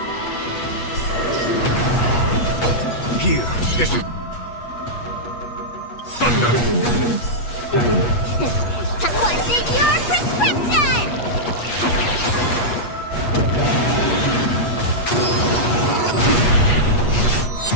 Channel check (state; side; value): late; right; 8.3 ms